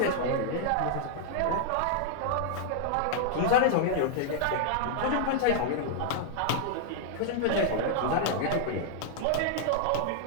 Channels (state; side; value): different; both; correlation -0.01